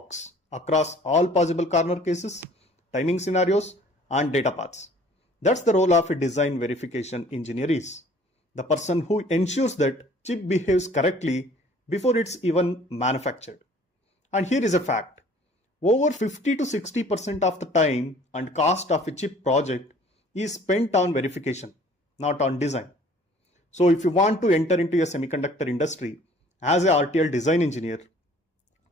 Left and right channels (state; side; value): normal; both; correlation 0.53